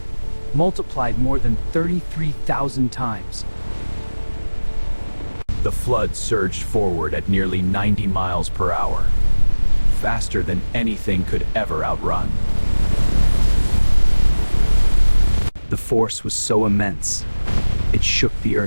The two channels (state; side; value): inverted; both; correlation -1.00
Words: multiplied more than 33,000 times. The flood surged forward at nearly 90 miles per hour, faster than anything could ever outrun. The force was so immense, it shook the